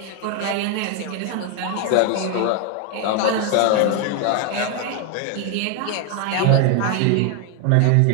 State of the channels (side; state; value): both; different; correlation 0.01